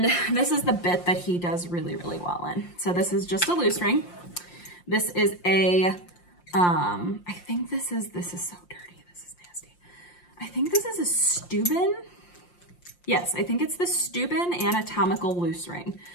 this is the bit that he does really, really well in. So this is just a loose ring. This is a, I think this is so dirty. This is nasty. I think this is a Steuben. Yes, I think it's the Steuben anatomical loose ring.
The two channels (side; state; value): right; late; 5.7 ms